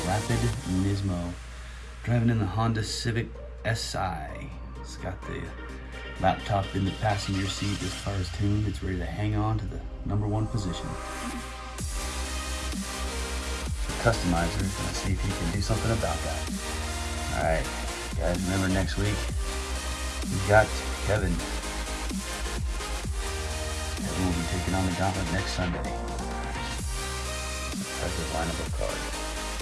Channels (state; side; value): identical; both; correlation 1.00